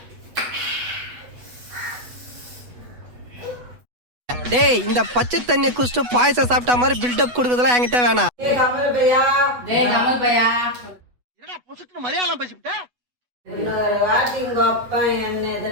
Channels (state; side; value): late; left; 8.1 ms